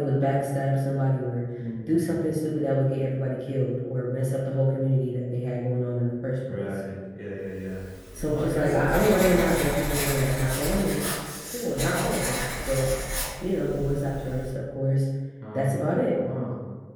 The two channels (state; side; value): identical; both; correlation 1.00